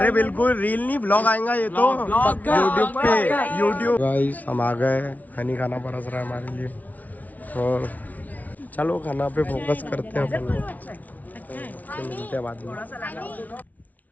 बिल्कुल रील नहीं ब्लॉग आएगा ये तो यूट्यूब पे। गाइस हम आ गए, हनी खाना परस रहा है हमारे लिए, और चलो खाना पे फोकस करते हैं अपन लोग, मिलते हैं बाद में।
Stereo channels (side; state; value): right; late; 0.075 ms